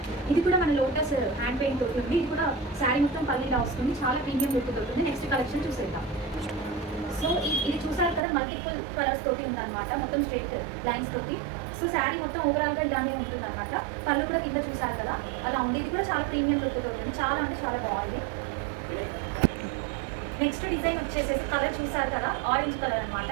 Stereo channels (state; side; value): drops out; left; at 8.2 s